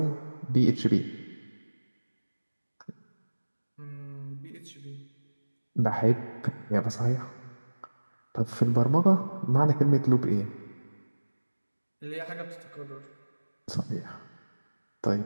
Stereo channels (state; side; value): inverted; both; correlation -1.00